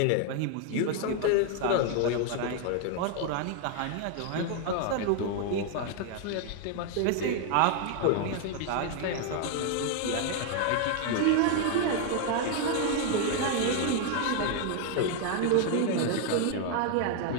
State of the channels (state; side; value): different; both; correlation 0.00